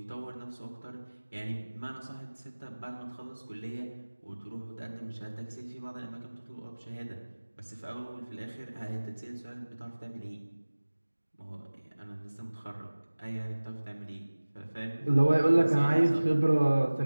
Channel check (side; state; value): both; inverted; correlation -1.00